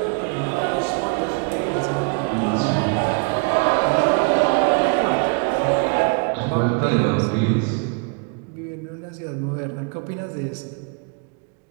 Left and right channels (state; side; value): quieter; left; 36.2 dB